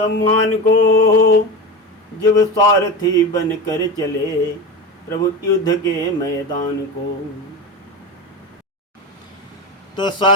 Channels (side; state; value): both; normal; correlation 0.24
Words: को, जब सारथी बन कर चले प्रभु युद्ध के मैदान को। तो